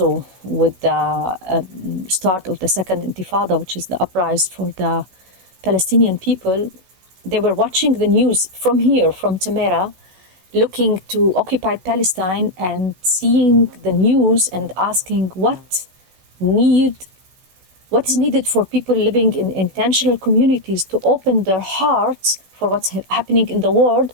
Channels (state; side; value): late; left; 16 ms